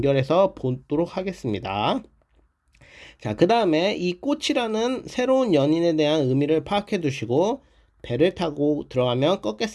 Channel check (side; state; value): both; identical; correlation 1.00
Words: 보도록 하겠습니다. 자, 그 다음에 이 꽃이라는 새로운 연인에 대한 의미를 파악해 두시고, 배를 타고 들어가면